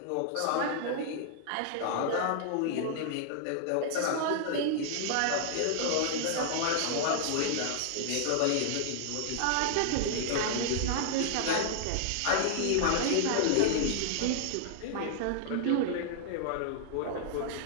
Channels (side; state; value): both; different; correlation -0.01